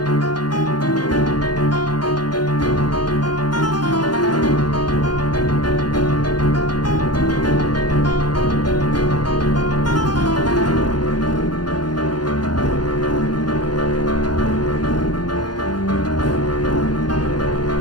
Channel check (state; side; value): late; right; 0.70 ms